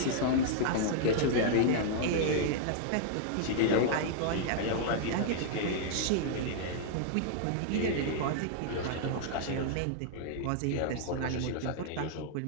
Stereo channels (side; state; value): both; different; correlation -0.01